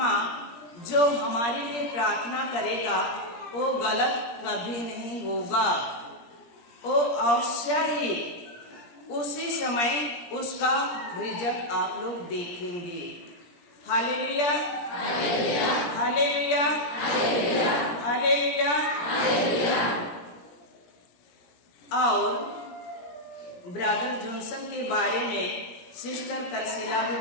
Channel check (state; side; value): late; right; 17 ms